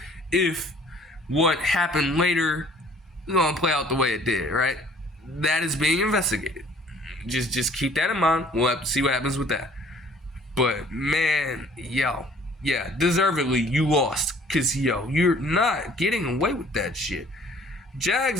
if what happened later is going to play out the way it did, right? That is being investigated. Just keep that in mind. We'll have to see what happens with that. But, man, yeah, deservedly, you lost. Because, you're not getting away with that shit.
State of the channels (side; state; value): both; normal; correlation 0.55